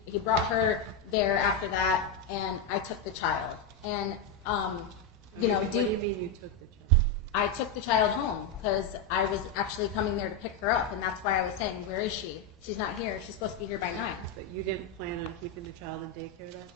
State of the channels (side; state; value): right; quieter; 3.8 dB